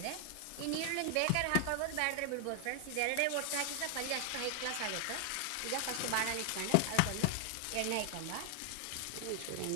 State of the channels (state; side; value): different; both; correlation 0.00